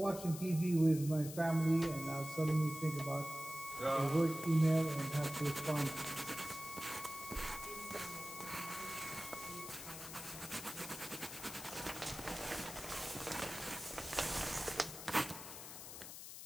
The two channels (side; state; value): left; noise; hiss, 10 dB below the sound